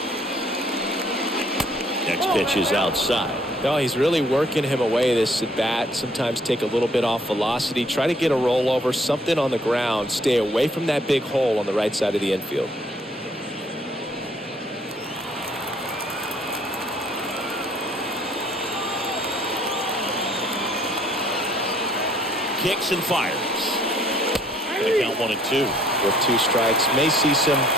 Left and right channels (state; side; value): normal; both; correlation 0.62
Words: Next pitch is outside. No, he's really working him away this at bat. Sometimes take a little bit off velocity. Try to get a rollover, something on the ground. Stay away from that big hole on the right side of the infield. Kicks and fires. They count 1-2. With 2 strikes. May see some